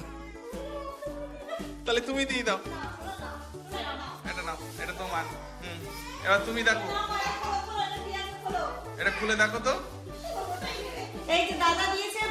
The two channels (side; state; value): both; identical; correlation 1.00